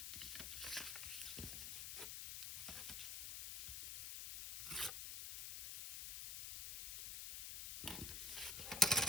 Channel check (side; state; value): left; noise; hiss, 5 dB below the sound